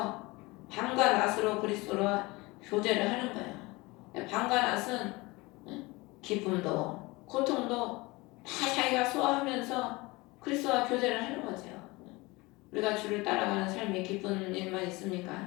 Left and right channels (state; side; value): quieter; right; 23.2 dB